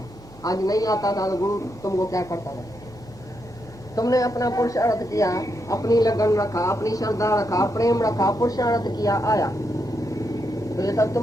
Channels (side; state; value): both; normal; correlation 0.81